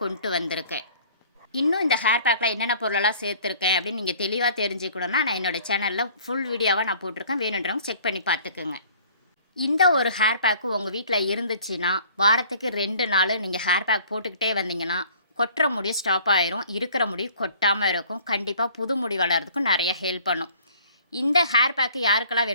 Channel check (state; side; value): inverted; both; correlation -0.52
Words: கொண்டு வந்திருக்கேன். இன்னும் இந்த ஹேர் பேக்கில் என்னென்ன பொருளெல்லாம் சேர்த்துருக்கேன் அப்படின்னு நீங்கள் தெளிவாக தெரிஞ்சுக்கணுன்னா நான் என்னோடய சேனலில் ஃபுல் வீடியோவாக நான் போட்டிருக்கேன். வேணுன்றவங்க செக் பண்ணி பார்த்துக்குங்க. இந்த ஒரு ஹேர் பேக்கு உங்கள் வீட்டில் இருந்துச்சுன்னா வாரத்துக்கு 2 நாள் நீங்கள் ஹேர் பேக் போட்டுக்கிட்டே வந்தீங்கன்னா கொட்டுற முடி ஸ்டாப் ஆயிரும். இருக்கிற முடி கொட்டாமல் இருக்கும். கண்டிப்பாக புது முடி வளர்கிறதுக்கும் நிறைய ஹெல்ப் பண்ணும். இந்த ஹேர் பேக்கு யாருக்கெல்லாம்